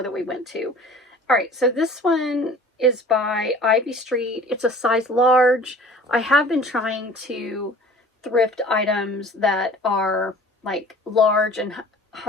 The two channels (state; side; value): normal; both; correlation 0.46